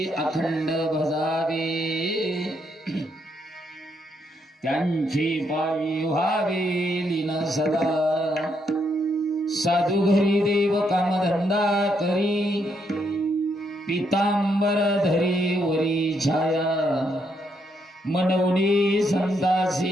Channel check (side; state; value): both; normal; correlation 0.76